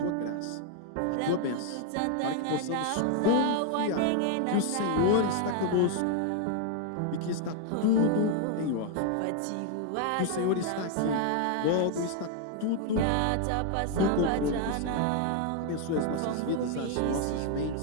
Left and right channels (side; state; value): both; different; correlation 0.00